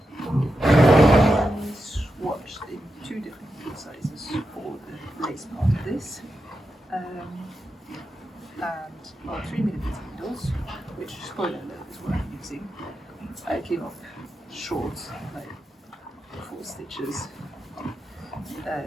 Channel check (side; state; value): both; normal; correlation 0.88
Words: I swatched in 2 different sizes for the lace part of this. And 3mm needles, which, spoiler alert, is what I'm using. I came up short, like 4 stitches,